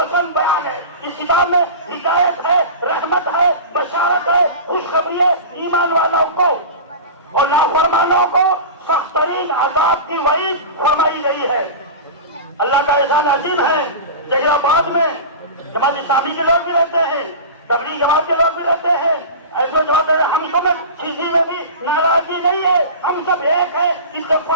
بیان ہے. اس کتاب میں ہدایت ہے، رحمت ہے، بشارت ہے، خوشخبری ہے ایمان والوں کو، اور نافرمانوں کو سخت ترین عذاب کی وعید فرمائی گئی ہے. اللہ کا احسان عظیم ہے. جہاں آباد میں جماعت اسلامی کے لوگ بھی رہتے ہیں، تبلیغ جماعت کے لوگ بھی رہتے ہیں. ایسے جواب دے رہے ہم سب کسی میں بھی ناراضی نہیں ہے، ہم سب ایک ہیں،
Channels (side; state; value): both; inverted; correlation -0.30